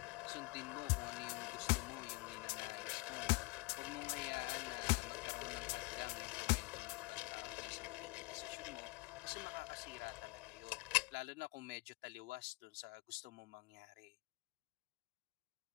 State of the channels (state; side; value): quieter; right; 24.9 dB